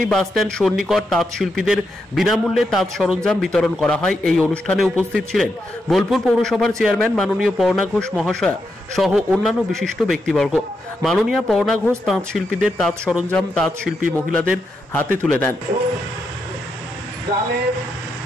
বাসস্ট্যান্ড সন্নিকট তাঁত শিল্পীদের বিনামূল্যে তাঁত সরঞ্জাম বিতরণ করা হয়। এই অনুষ্ঠানে উপস্থিত ছিলেন বোলপুর পৌরসভার চেয়ারম্যান মাননীয় পর্ণা ঘোষ মহাশয়া সহ অন্যান্য বিশিষ্ট ব্যক্তিবর্গ। মাননীয় পর্ণা ঘোষ তাঁত শিল্পীদের তাঁত সরঞ্জাম তাঁত শিল্পী মহিলাদের হাতে তুলে দেন।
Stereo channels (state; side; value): normal; both; correlation 0.84